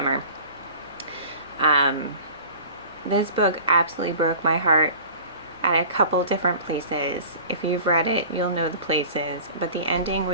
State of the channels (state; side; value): inverted; both; correlation -0.41